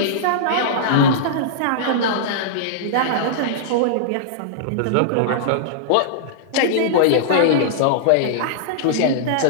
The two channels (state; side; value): different; both; correlation -0.02